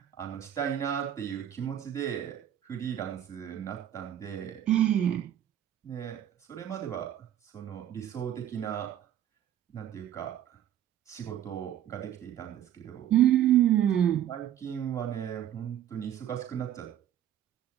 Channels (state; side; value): quieter; left; 11.0 dB